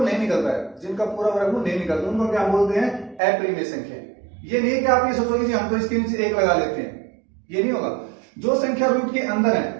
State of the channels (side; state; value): left; drops out; at 3.2 s